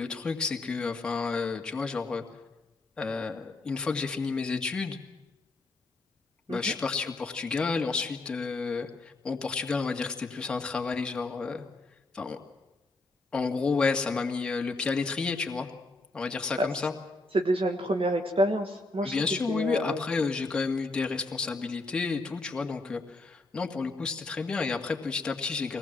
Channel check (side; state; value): right; quieter; 3.0 dB